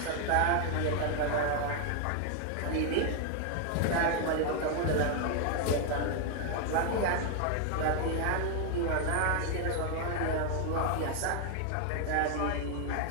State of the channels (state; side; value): different; both; correlation 0.00